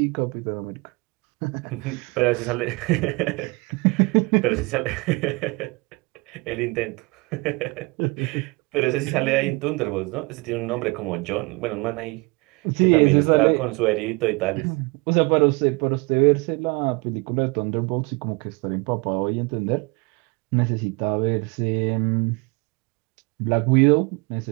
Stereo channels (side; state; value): left; quieter; 27.4 dB